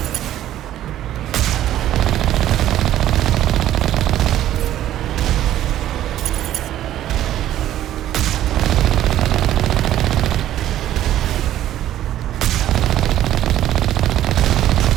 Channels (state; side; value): quieter; left; 12.6 dB